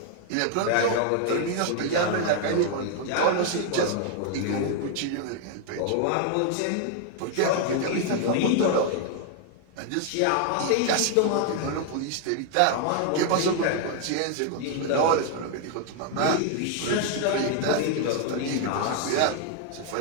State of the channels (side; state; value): both; different; correlation 0.00